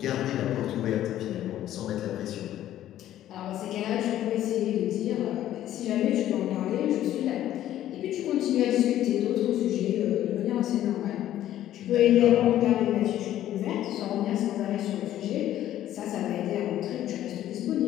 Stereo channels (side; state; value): right; quieter; 12.6 dB